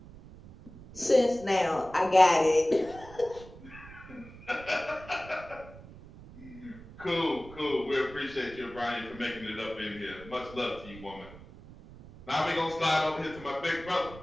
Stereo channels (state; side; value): noise; right; rumble, 18 dB below the sound